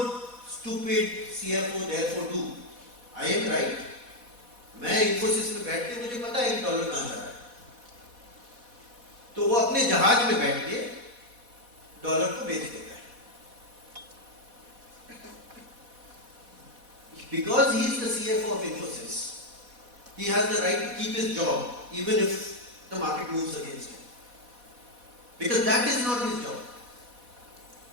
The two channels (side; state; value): left; late; 4.1 ms